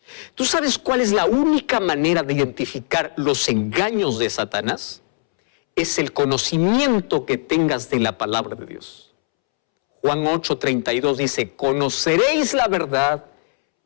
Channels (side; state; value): right; silent; 66 dB below the other